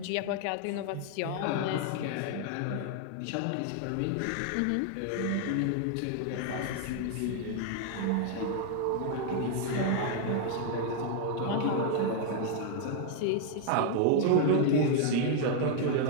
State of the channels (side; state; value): both; different; correlation 0.00